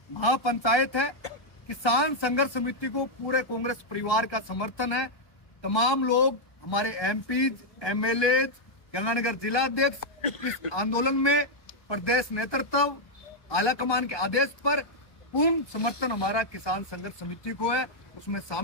महापंचायत है, किसान संघर्ष समिति को पूरे कांग्रेस परिवार का समर्थन है। तमाम लोग, हमारे एमपीज, एमएलए, गंगानगर जिलाध्यक्ष इस आंदोलन में प्रदेश नेतृत्व आला कमान के आदेश पर पूर्ण समर्थन हमारा किसान संघर्ष समिति को है, उसमें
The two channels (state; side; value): late; right; 1.0 ms